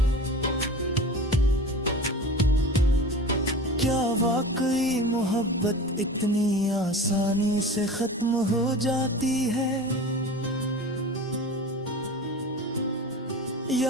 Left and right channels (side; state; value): both; normal; correlation 0.35